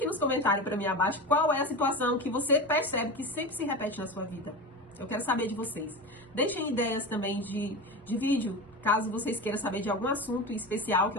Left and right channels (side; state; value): both; normal; correlation 0.25